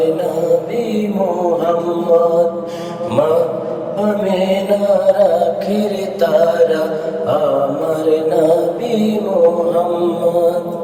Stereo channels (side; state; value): both; identical; correlation 1.00